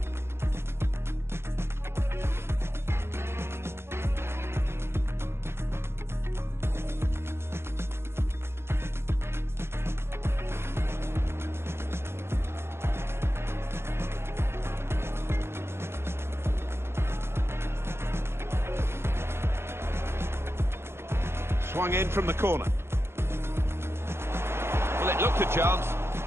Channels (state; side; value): late; left; 0.12 ms